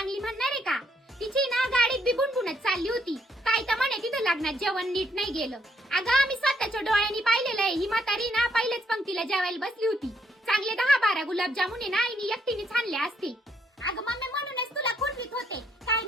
म्हणणार आहे का? तिची ना गाडीत बी बुणबुणत चालली होती. काय तर म्हणे तिथं लग्नात जेवण नीट नाही गेलं. अगं आम्ही स्वतःच्या डोळ्यांनी पाहिलेलं आहे. ही म्हातारी ना पहिलेच पंक्तीला जेवायला बसली होती. चांगले 10-12 गुलाबजामुने ना आईने एकटीने छानले असते. अगं मम्मी म्हणूनच तुला खुटवीत होते काय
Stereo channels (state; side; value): normal; both; correlation 0.72